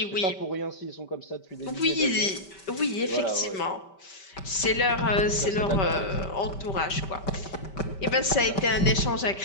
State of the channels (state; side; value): late; right; 5.1 ms